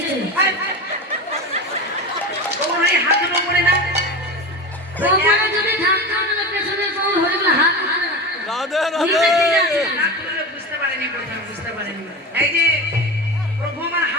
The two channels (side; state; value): both; normal; correlation 0.26